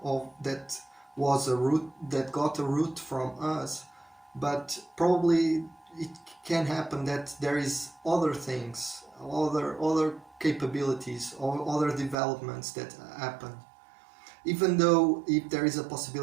of that was a root that got a root from us, but probably it can happen that there is other things, other capabilities or other developments that happen. Even though if there is a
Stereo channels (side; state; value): left; drops out; at 12.2 s